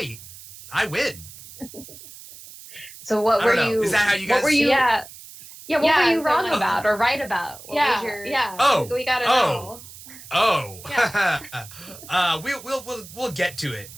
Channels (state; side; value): noise; right; hiss, 17 dB below the sound